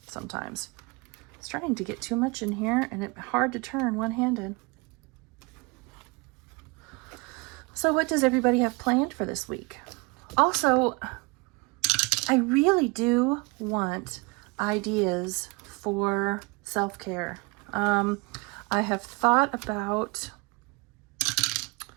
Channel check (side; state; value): left; quieter; 28.0 dB